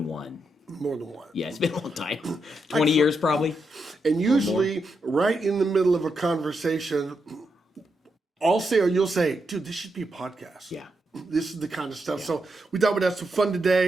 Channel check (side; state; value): both; normal; correlation 0.83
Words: one. More than one. Yeah, it's been a long time. 20 years probably. And usually right in the middle of a conversation, I'll say or you'll say, dude, this should be a podcast. Yeah. This is the kind of stuff. Yeah. So we thought we'd have some fun